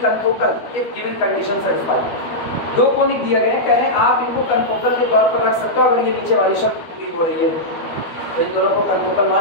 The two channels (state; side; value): late; right; 13 ms